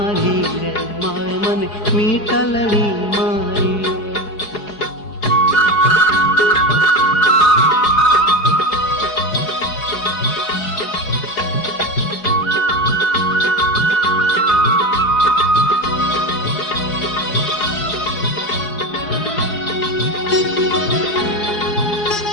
रे मावे मन मीतलड़ी मारी रे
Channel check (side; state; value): right; late; 4.8 ms